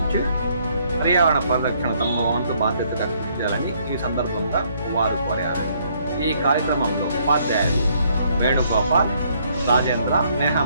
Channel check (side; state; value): both; inverted; correlation -0.67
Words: పర్యావరణ పరిరక్షణ తమ వంతు బాధ్యతగా కృషి చేయాలని ఈ సందర్భంగా వారు కోరారు. ఈ కార్యక్రమంలో ఉపాధ్యాయులు వేణుగోపాల్, రాజేంద్ర,